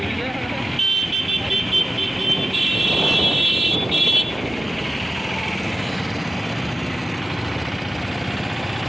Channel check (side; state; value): both; normal; correlation 0.96